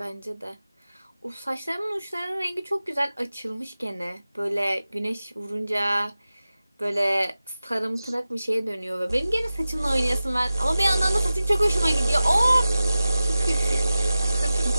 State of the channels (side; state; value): both; inverted; correlation -0.95